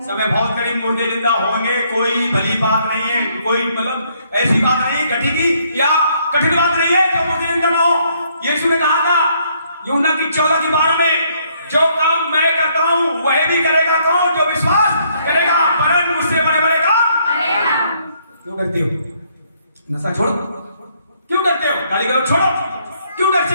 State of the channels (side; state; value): both; inverted; correlation -0.69